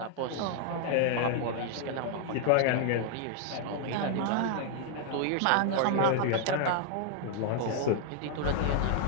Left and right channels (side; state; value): both; different; correlation 0.00